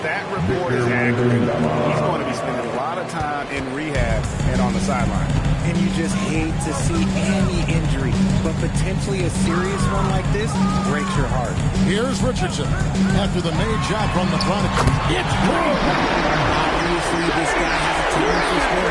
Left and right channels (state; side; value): identical; both; correlation 1.00